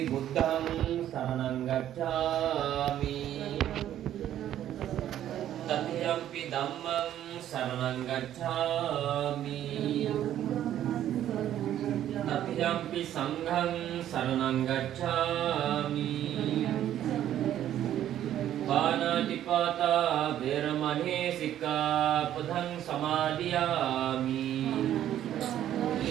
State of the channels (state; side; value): quieter; left; 11.6 dB